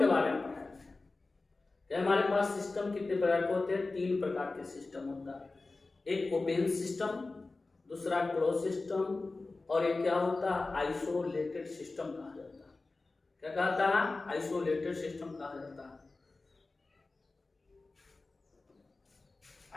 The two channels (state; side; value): quieter; right; 3.5 dB